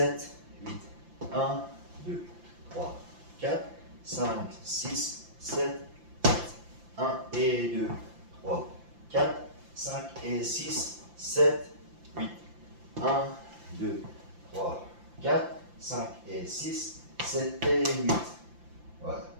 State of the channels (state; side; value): late; left; 5.8 ms